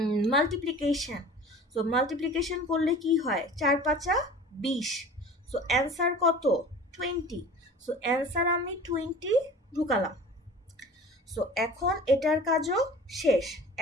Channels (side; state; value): both; normal; correlation 0.42